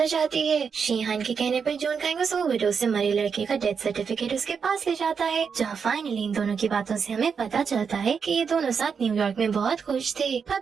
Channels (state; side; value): quieter; left; 6.2 dB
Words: हो जाती है। शीहान के कहने पर जून कांग उस ओवरडोज से मरे लड़के का डेथ सर्टिफिकेट उसके पास ले जाता है, जहाँ फाइनली इन दोनों की बातों से हमें पता चलता है कि ये दोनों साथ न्यूयॉर्क में बहुत खुश थे। पर